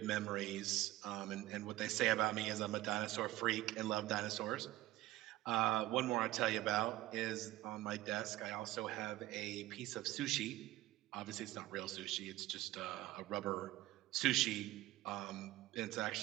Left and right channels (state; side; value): quieter; left; 16.4 dB